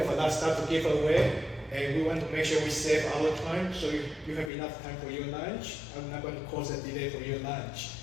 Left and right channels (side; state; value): right; drops out; at 4.5 s